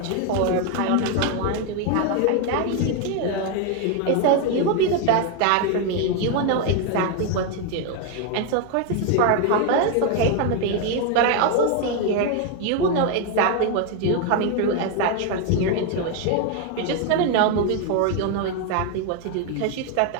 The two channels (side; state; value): both; different; correlation 0.01